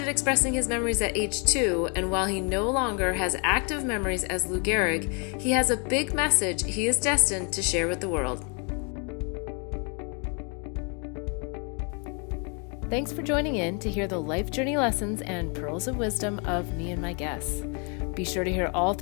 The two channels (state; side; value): quieter; right; 35.5 dB